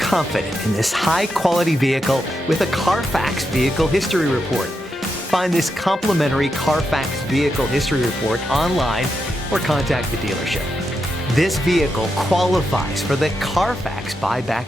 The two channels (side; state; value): both; normal; correlation 0.85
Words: confident in this high-quality vehicle with a Carfax Vehicle History Report. Find this complimentary Carfax Vehicle History Report online or contact the dealership. This vehicle qualifies for the Carfax